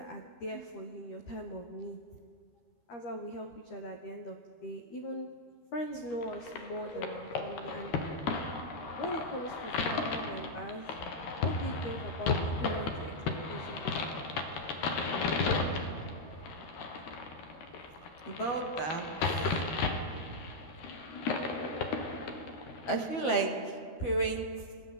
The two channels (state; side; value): late; right; 12 ms